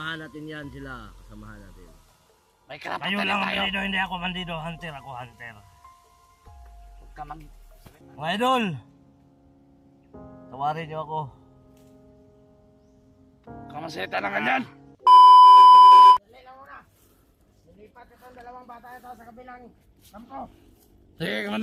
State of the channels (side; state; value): both; identical; correlation 1.00